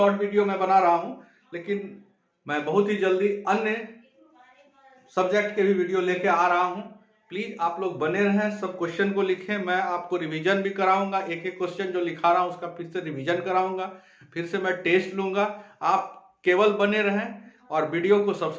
वीडियो मैं बना रहा हूं, लेकिन मैं बहुत ही जल्दी अन्य सब्जेक्ट के भी वीडियो लेके आ रहा हूं। प्लीज आप लोग बने रहें, सब क्वेश्चन को लिखें, मैं आपको रिवीजन भी कराऊंगा। एक क्वेश्चन जो लिखा रहा हूं उसका फिर से रिवीजन कराऊंगा, फिर से मैं टेस्ट लूंगा। आप केवल बने रहें और वीडियो को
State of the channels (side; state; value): both; identical; correlation 1.00